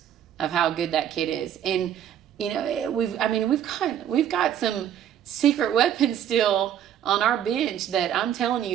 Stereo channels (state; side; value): quieter; left; 10.1 dB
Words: of how good that kid is. And, we've got some secret weapons still on our bench that I'm telling